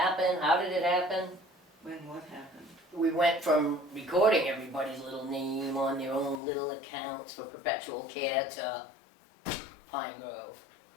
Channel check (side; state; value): right; drops out; at 6.4 s